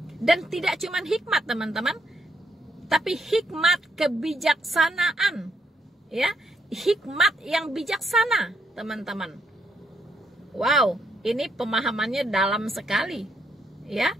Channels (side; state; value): both; normal; correlation 0.75